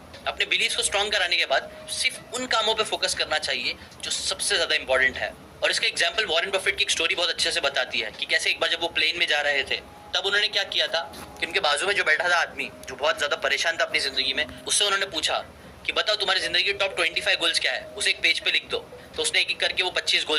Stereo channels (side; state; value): both; identical; correlation 1.00